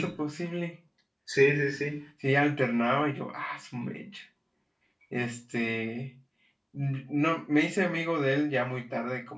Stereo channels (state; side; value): identical; both; correlation 1.00